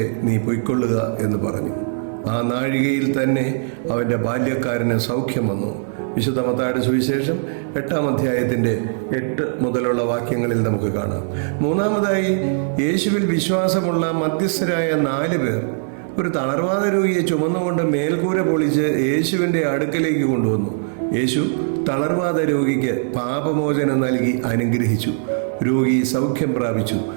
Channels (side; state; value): left; silent; 65 dB below the other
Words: നീ പൊയ്ക്കൊള്ളുക എന്ന് പറഞ്ഞു. ആ നാഴികയിൽ തന്നെ അവൻ്റെ ബാല്യക്കാരന് സൗഖ്യം വന്നു. വിശുദ്ധ മത്തായിയുടെ സുവിശേഷം 8 മുതലുള്ള വാക്യങ്ങളിൽ നമുക്ക് കാണാം. മൂന്നാമതായി, യേശുവിൽ വിശ്വാസമുള്ള മധ്യസ്ഥരായ 4 പേർ ഒരു തളർവാദ രോഗിയെ ചുമന്നുകൊണ്ട് മേൽക്കൂര പൊളിച്ച് യേശുവിൻ്റെ അടുക്കലേക്ക് കൊണ്ടുവന്നു. യേശു തളർവാദ രോഗിക്ക് പാപമോചനം നൽകി അനുഗ്രഹിച്ചു. രോഗി സൗഖ്യം പ്രാപിച്ചു.